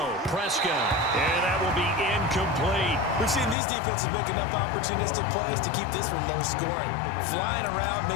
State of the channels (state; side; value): drops out; right; at 3.6 s